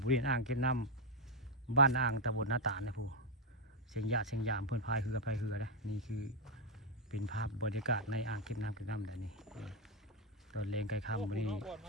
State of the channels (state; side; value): normal; both; correlation 0.01